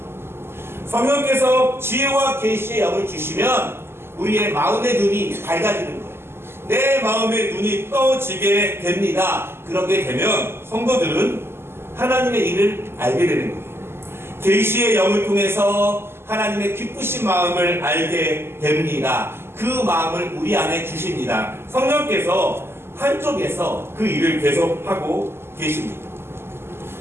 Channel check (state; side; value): late; left; 0.12 ms